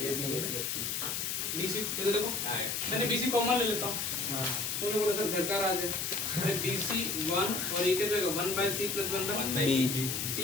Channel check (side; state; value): left; noise; hiss, 1 dB below the sound